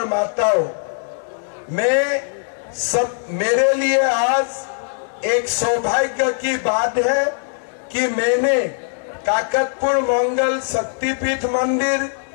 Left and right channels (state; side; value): silent; right; 66 dB below the other